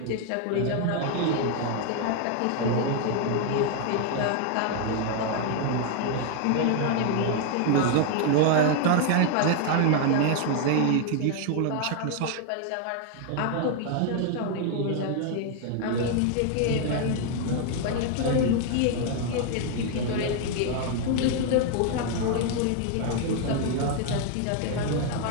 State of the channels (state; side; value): different; both; correlation 0.00